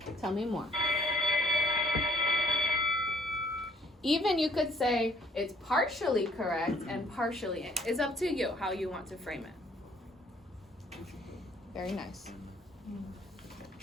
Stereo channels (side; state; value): both; normal; correlation 0.62